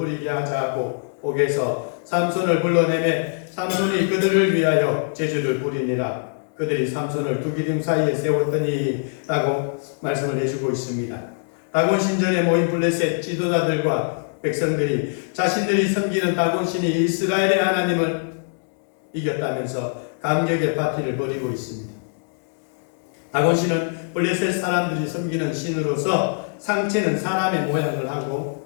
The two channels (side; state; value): right; silent; digital silence